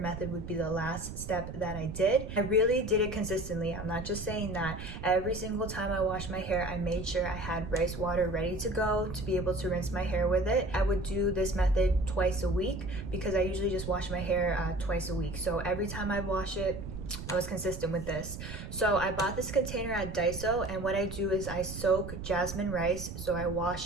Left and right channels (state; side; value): noise; right; rumble, 9 dB below the sound